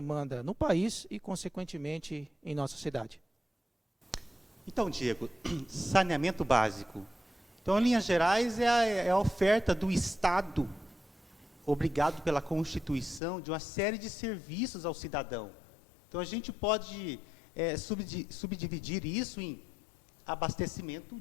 no país e, consequentemente, em nossa cidade. Então, Diego, saneamento básico. Então, em linhas gerais, é a oferta do Estado, obrigado pela Constituição, de uma série de serviços ao cidadão. Então, a gente pode subdividir isso em abastecimento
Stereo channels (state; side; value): drops out; right; at 13.2 s